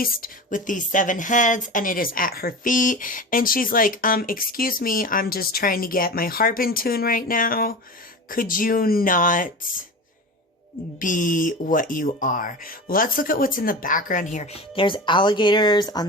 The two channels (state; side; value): normal; both; correlation 0.30